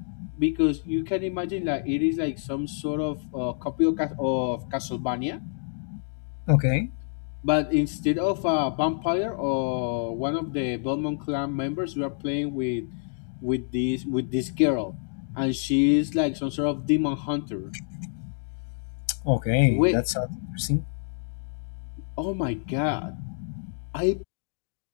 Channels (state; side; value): silent; right; digital silence